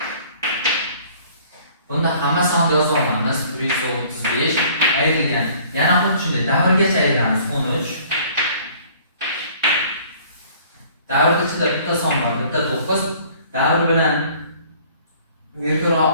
bunda hamma sonni yozib olamiz. 135 ayrilgan. Yana xuddi shunday davrgacha ayiramiz. 13. Davr ichida bitta son bor, bitta 9. Davr bilan virgul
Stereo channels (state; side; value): inverted; both; correlation -0.54